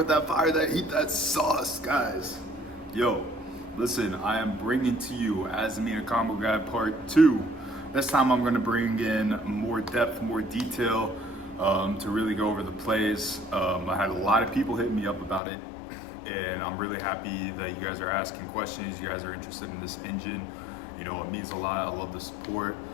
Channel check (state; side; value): drops out; right; at 15.4 s